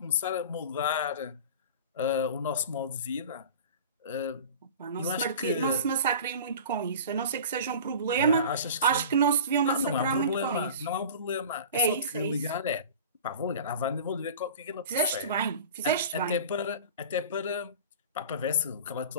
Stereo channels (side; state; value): both; inverted; correlation -0.37